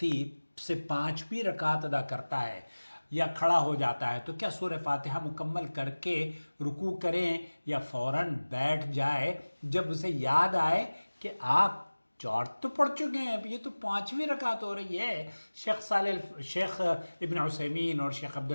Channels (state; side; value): inverted; both; correlation -1.00